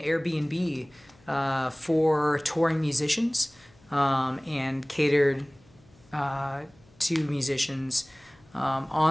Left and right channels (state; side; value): noise; left; hum, 29 dB below the sound